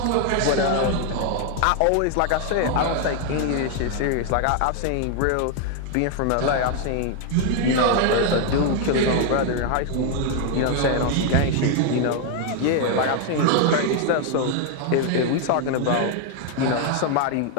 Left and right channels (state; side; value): different; both; correlation 0.00